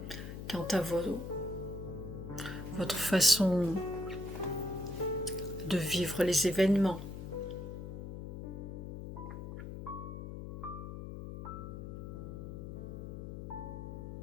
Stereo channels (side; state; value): left; noise; hum, 8 dB below the sound